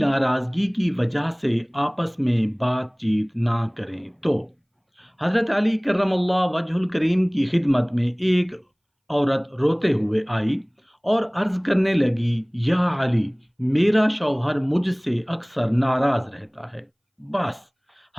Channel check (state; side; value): identical; both; correlation 1.00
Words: کی وجہ سے آپس میں بات چیت نہ کریں تو حضرت علی کرم اللہ وجہ الکریم کی خدمت میں ایک عورت روتے ہوئے آئی اور عرض کرنے لگی، یا علی، میرا شوہر مجھ سے اکثر ناراض رہتا ہے۔ بس